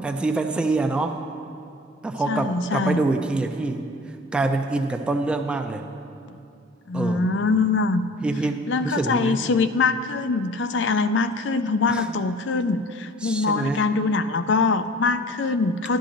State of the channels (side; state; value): both; normal; correlation 0.46